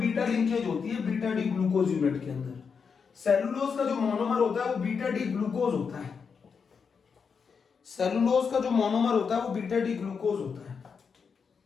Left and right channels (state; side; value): quieter; right; 5.9 dB